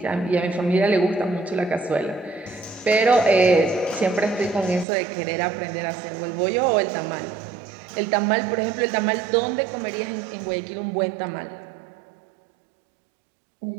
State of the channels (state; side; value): drops out; left; at 4.9 s